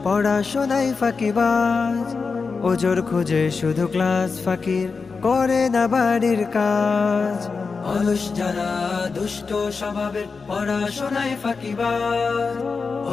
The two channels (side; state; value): right; quieter; 4.7 dB